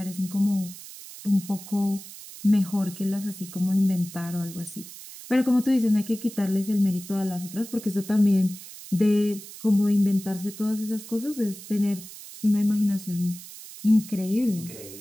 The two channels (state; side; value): noise; right; hiss, 15 dB below the sound